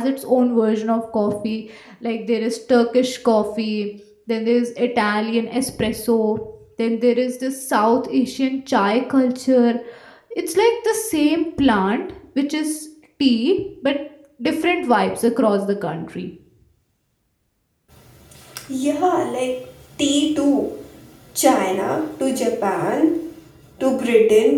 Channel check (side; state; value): both; identical; correlation 1.00